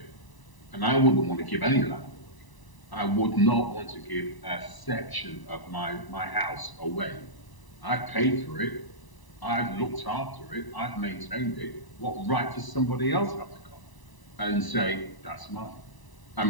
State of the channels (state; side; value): late; right; 1.0 ms